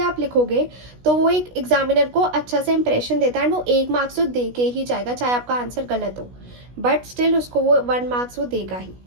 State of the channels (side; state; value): left; late; 16 ms